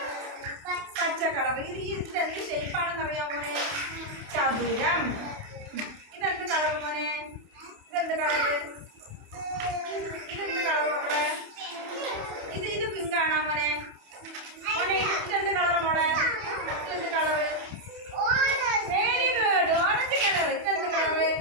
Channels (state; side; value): late; left; 28 ms